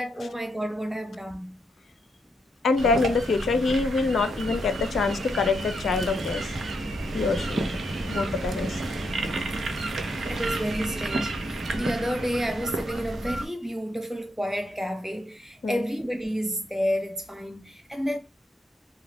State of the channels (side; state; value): both; normal; correlation 0.79